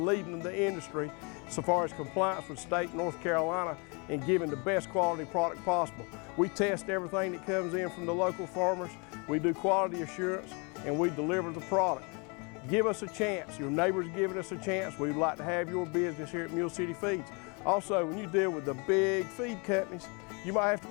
leading the industry so far as compliance with state North Carolina and giving the best quality product possible. We test everything that comes in from the local farmers. We do quality assurance and we deliver the product. Give us a chance. Your neighbors giving us a chance. We'd like to have your business here at Mule City Feeds. Also, when you deal with the big feed companies, you might have to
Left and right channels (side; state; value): right; quieter; 32.0 dB